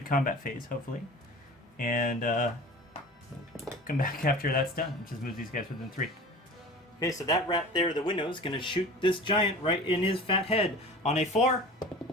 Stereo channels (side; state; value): both; normal; correlation 0.38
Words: combat phase, hopefully, and come back after that's done. Just move these guys within 3. Okay, so that rat there, the window, is going to shoot this giant right in his fat head. On a 4,